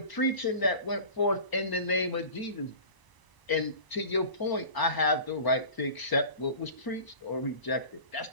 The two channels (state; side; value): late; right; 1.0 ms